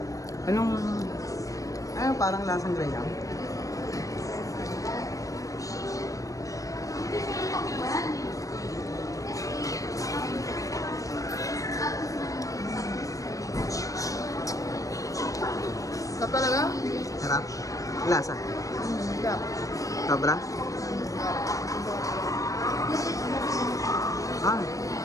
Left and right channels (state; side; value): late; right; 0.16 ms